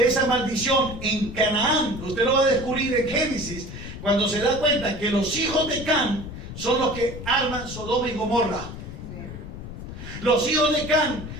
esa maldición en Canaán, usted lo va a descubrir en Génesis, cuando se da cuenta que los hijos de Can son los que arman Sodoma y Gomorra. Los hijos de Can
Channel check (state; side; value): noise; left; rumble, 10 dB below the sound